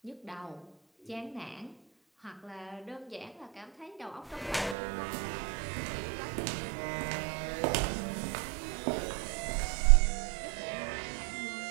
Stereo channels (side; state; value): left; drops out; at 4.8 s